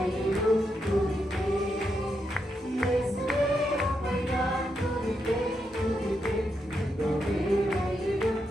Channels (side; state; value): both; normal; correlation 0.83